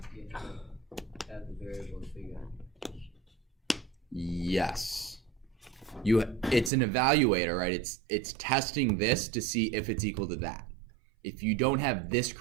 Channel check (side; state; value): left; drops out; at 6.7 s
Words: to have the variable figure out. Yes. It's an evaluator, right? It's testing this to see if it's equal to that. If you don't have this